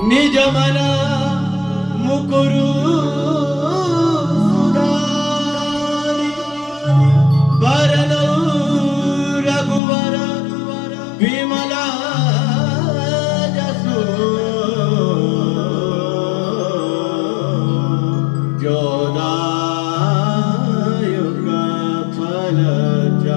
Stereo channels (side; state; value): right; drops out; at 9.8 s